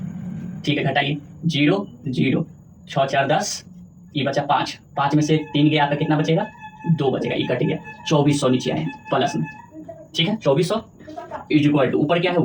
ठीक है, घटाइए, 0 0, 6 4 10, ये बचा 5, 5 में से 3 गया, आपका कितना बचेगा, 2 बचेगा, ये कट गया, 2400 नीचे आए प्लस में। ठीक है, 2400 इक्वल टू, ऊपर क्या है,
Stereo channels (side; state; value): both; identical; correlation 1.00